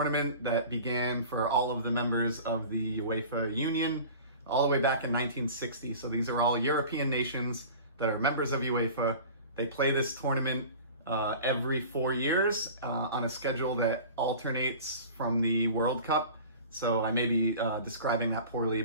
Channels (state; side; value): inverted; both; correlation -0.40